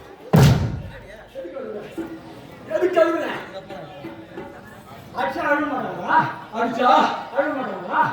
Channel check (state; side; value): identical; both; correlation 1.00